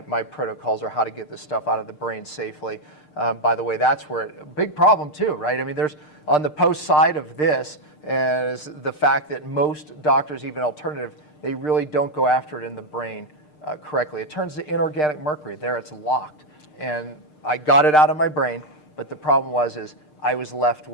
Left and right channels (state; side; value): late; right; 6.6 ms